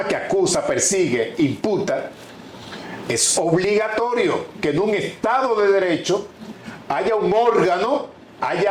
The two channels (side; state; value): both; identical; correlation 1.00